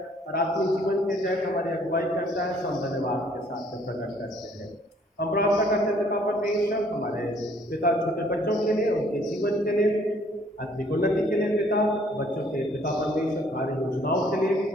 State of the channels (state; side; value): normal; both; correlation 0.61